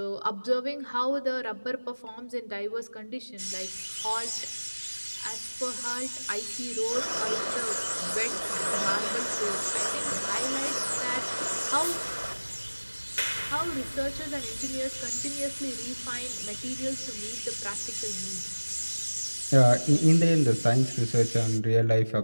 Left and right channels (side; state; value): both; inverted; correlation -1.00